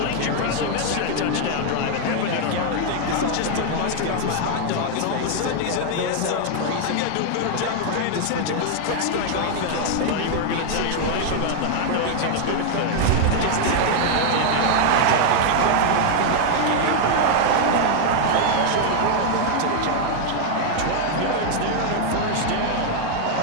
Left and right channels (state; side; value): different; both; correlation 0.00